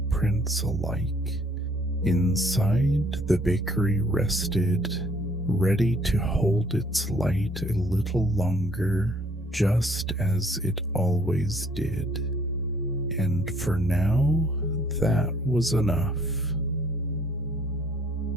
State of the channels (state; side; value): normal; both; correlation 0.61